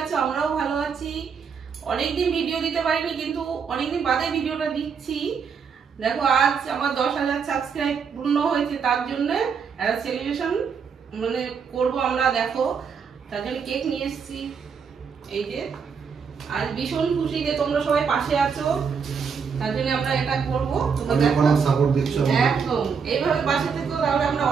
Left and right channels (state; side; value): quieter; left; 6.2 dB